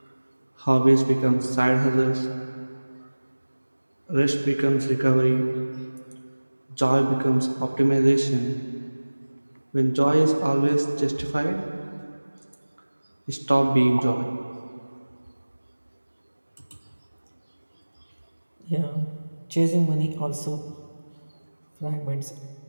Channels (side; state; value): both; inverted; correlation -1.00